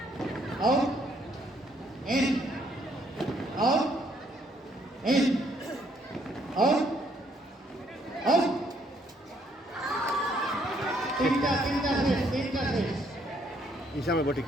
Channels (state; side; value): normal; both; correlation 0.68